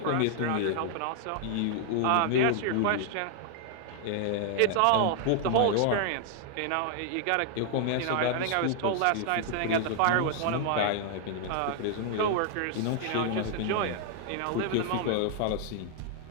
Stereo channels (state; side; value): different; both; correlation 0.00